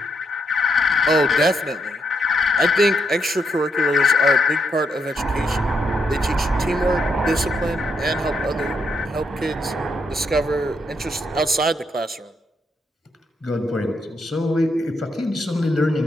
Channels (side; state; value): both; normal; correlation 0.76